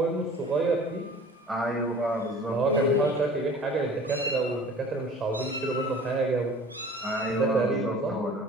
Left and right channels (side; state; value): both; normal; correlation 0.45